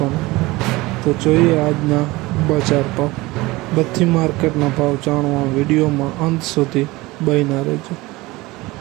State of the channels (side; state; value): left; quieter; 20.9 dB